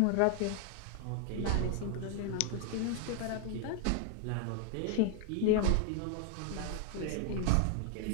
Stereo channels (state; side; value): different; both; correlation 0.00